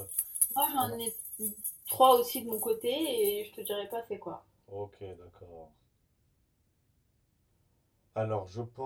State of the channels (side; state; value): both; identical; correlation 1.00